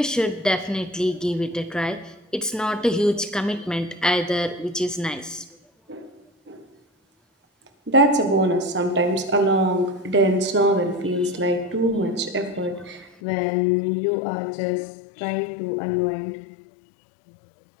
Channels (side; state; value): right; drops out; at 13.2 s